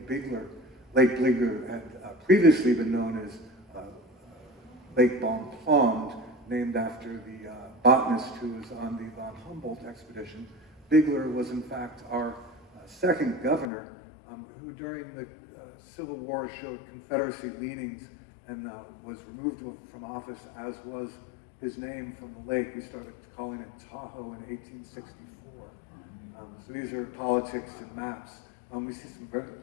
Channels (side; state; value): right; drops out; at 13.7 s